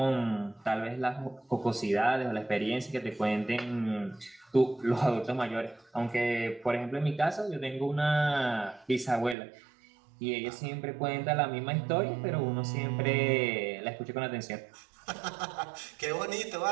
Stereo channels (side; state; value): left; drops out; at 9.3 s